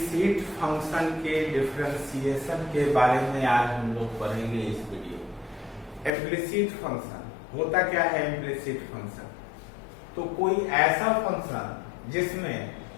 फंक्शन के डिफरेंशिएशन के बारे में आज हम लोग पढ़ेंगे इस वीडियो। इम्प्लिसिट फंक्शन होता क्या है? इम्प्लिसिट फंक्शन तो कोई ऐसा फंक्शन जिसमें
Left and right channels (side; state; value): right; drops out; at 6.1 s